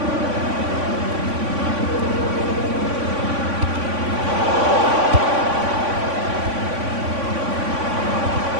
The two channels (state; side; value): late; left; 3.5 ms